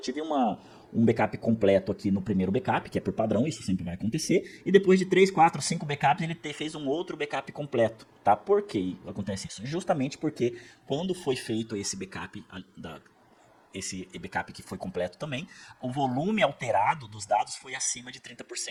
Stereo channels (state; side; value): identical; both; correlation 1.00